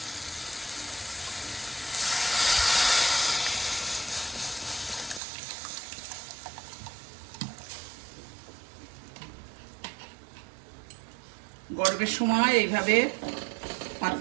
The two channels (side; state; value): left; drops out; at 5.2 s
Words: গরমের সময় এইভাবে